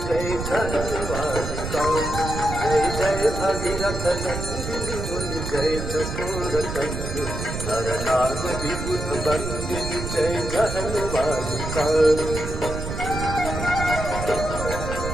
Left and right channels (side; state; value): right; noise; rumble, 5 dB below the sound